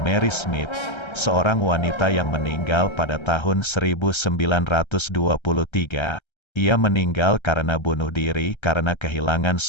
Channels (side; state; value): right; late; 1.3 ms